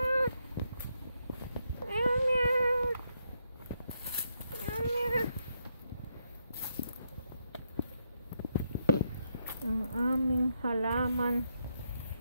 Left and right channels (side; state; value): both; inverted; correlation -0.79